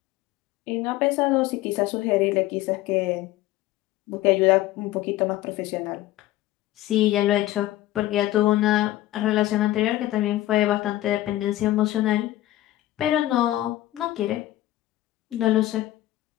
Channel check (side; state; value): right; quieter; 15.6 dB